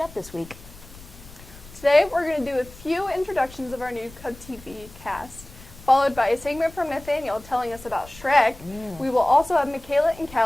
this week. Today, we're going to do a few introductions of our new CubTV cast, followed by a segment from Nathaniel telling us about Shrek. We will also have Michaela and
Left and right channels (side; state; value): left; noise; rumble, 19 dB below the sound